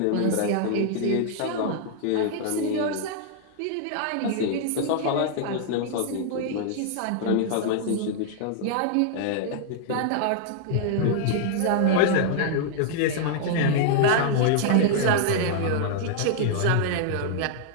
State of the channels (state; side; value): different; both; correlation -0.01